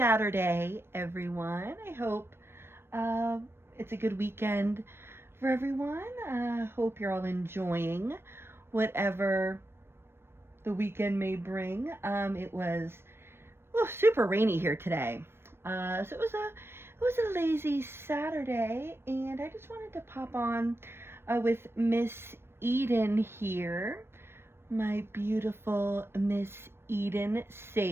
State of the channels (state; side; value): late; left; 0.12 ms